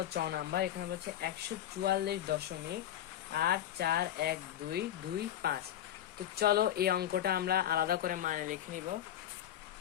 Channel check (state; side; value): quieter; right; 11.7 dB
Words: 6 নাম্বার, এখানে বলছে 144.841225। তো চলো এই অঙ্কটা আমরা আলাদা করে মানে লিখে নিব।